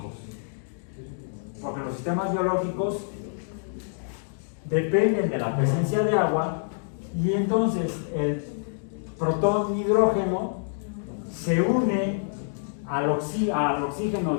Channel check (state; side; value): silent; right; digital silence